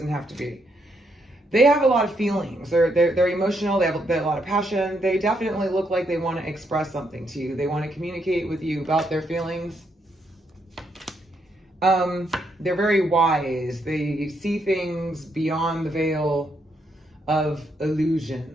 have to be. They have a lot of feelings. They're emotional. They have a lot of passion. They definitely look like they want to express something to you. They want to communicate with you about their feelings. They're very wise. They see things beyond the veil of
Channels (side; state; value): both; normal; correlation 0.77